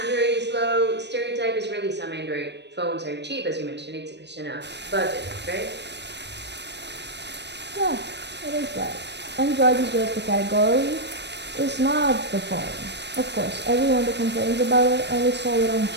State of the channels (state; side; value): late; left; 0.50 ms